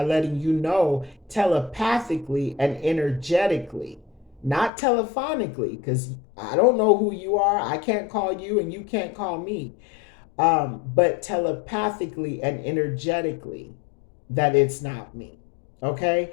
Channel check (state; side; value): drops out; right; at 4.7 s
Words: letting you know telepathically and energetically, not telephonically, because I don't know who you are. I can't call you and you can't call me. But telepathically and energetically, that it's not me.